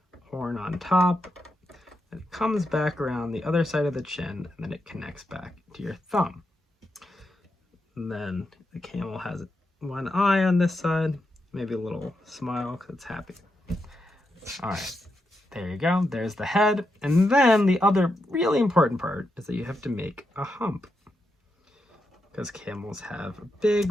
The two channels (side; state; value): both; normal; correlation 0.85